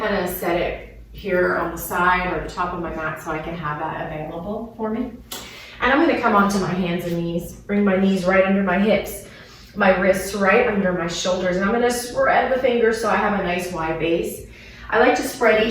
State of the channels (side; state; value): both; identical; correlation 1.00